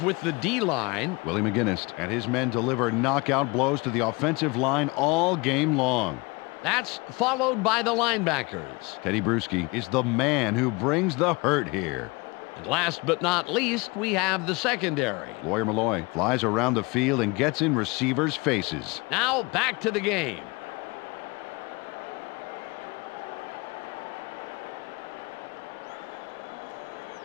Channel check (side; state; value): right; quieter; 26.0 dB